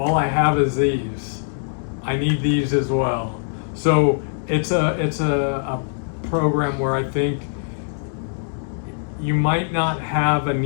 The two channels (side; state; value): right; silent; digital silence